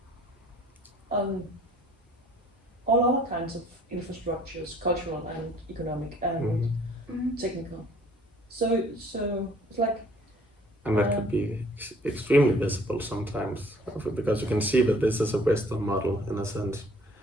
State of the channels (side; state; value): both; normal; correlation 0.56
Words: on all other kinds of infrastructures, cultural and economic and technical. So it's like, and that could be extremely visible sometimes, because you can see that this is a Western model in a sense.